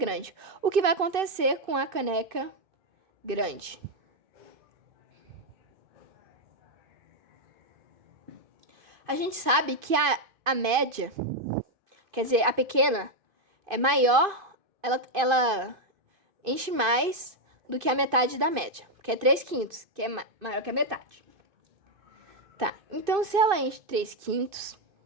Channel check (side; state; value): left; late; 2.5 ms